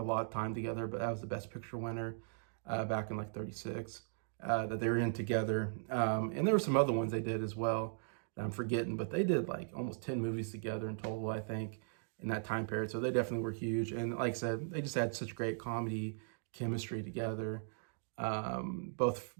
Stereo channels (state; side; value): silent; left; digital silence